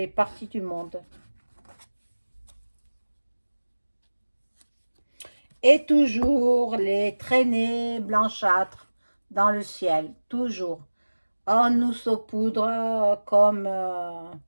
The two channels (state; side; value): inverted; both; correlation -1.00